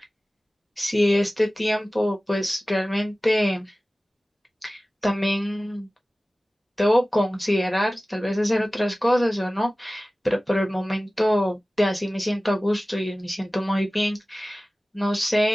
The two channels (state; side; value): normal; both; correlation 0.97